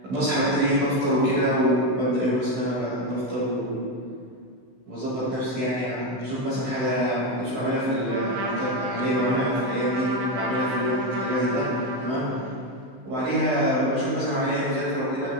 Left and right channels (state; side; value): late; left; 16 ms